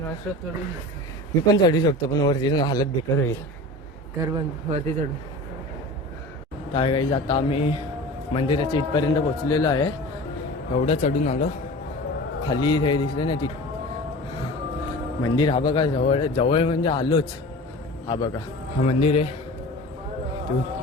असं चढून मी पण चढू शकतो, पण वरती जाऊन हालत बेकार होईल. घर बंद वरती चढून. काय काही आता आम्ही मंदिराच्या इथपर्यंत पोचलेलो आहे. एवढं चढून आलो. खाली हे दिसलं ना ती मंदिर. हा बघा, जवळ जवळ म्हणजे आलोच. हा बघा, हा मंदिर आहे. तू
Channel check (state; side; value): normal; both; correlation 0.36